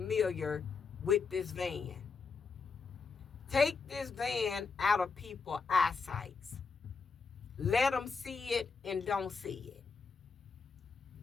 with this van. Take this van out of people's eyesight. Let them see it and don't see it.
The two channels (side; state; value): right; quieter; 4.9 dB